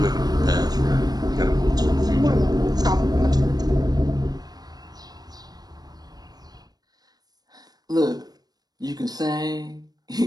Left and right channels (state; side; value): late; left; 0.19 ms